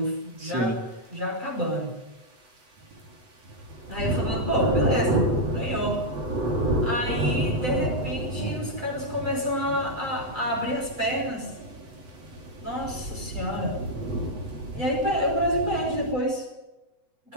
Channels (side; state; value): left; late; 8.0 ms